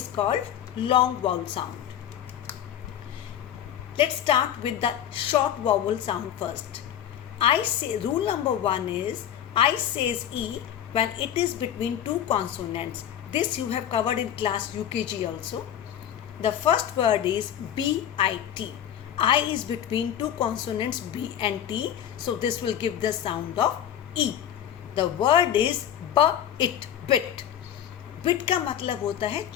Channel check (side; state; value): right; quieter; 10.2 dB